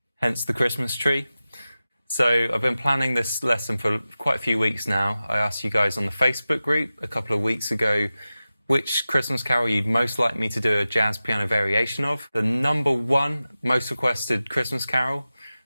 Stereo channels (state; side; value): inverted; both; correlation -0.95